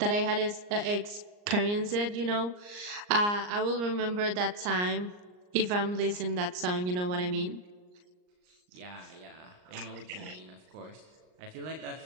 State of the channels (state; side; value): late; left; 39 ms